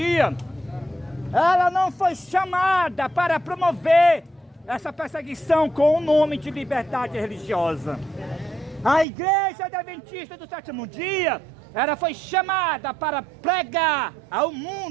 ela não foi chamada para promover essa perseguição com o nome de liberdade religiosa. A igreja adventista do sétimo dia, ela foi chamada para pregar ao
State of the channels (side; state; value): left; drops out; at 9.1 s